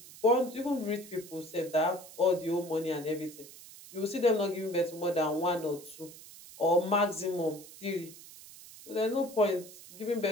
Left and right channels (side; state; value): right; noise; hiss, 17 dB below the sound